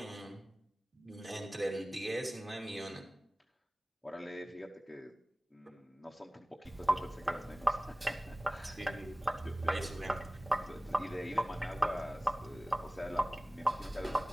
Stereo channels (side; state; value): both; normal; correlation 0.98